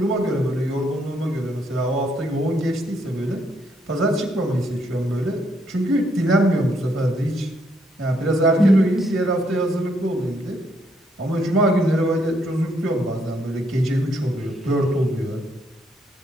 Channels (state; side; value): normal; both; correlation 0.73